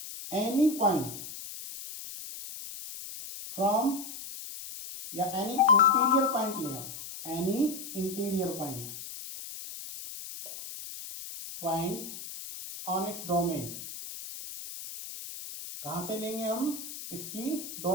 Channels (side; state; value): left; noise; hiss, 10 dB below the sound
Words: any point from, या एनी इंटीरियर पॉइंट लेना, any interior point on its domain, कहां से लेंगे हम, इसकी